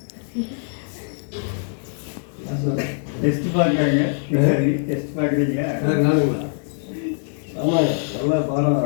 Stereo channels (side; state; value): right; silent; 64 dB below the other